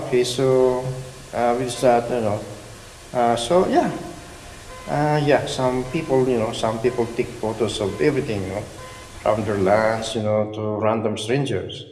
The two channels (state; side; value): identical; both; correlation 1.00